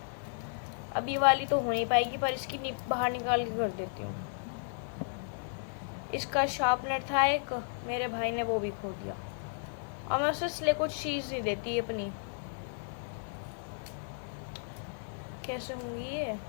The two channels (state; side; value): silent; right; 55 dB below the other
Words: अब ये वाली तो हो नहीं पाएगी, पर इसकी बाहर निकाल के कर देती हूँ। इसका शार्पनर था एक, मेरे भाई ने वो भी खो दिया, और मैं उसे इसलिए कुछ चीज़ नहीं देती अपनी। कैसे होंगी ये